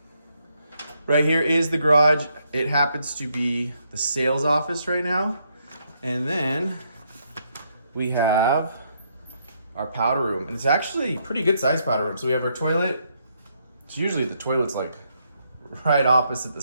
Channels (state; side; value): inverted; both; correlation -0.75